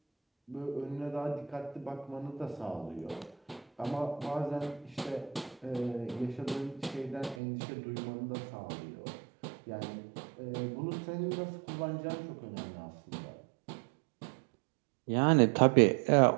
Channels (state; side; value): drops out; left; at 7.4 s